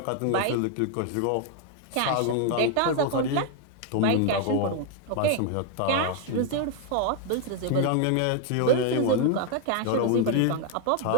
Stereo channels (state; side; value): different; both; correlation 0.00